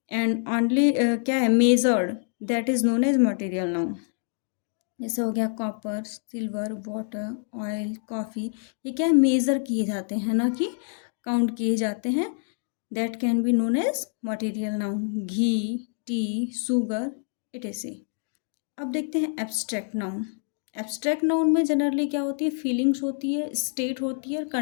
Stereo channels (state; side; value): silent; right; 61 dB below the other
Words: and only क्या है measured, that is known as material noun. जैसे हो गया copper, silver, water, oil, coffee, ये क्या है मेज़र किए जाते हैं ना कि काउंट किए जाते हैं, that can be known as material noun. Ghee, tea, sugar, it is a. अब देखते हैं एब्स्ट्रैक्ट नाउन। एब्स्ट्रैक्ट नाउन में जनरली क्या होती है, फीलिंग्स होती है, स्टेट होती है और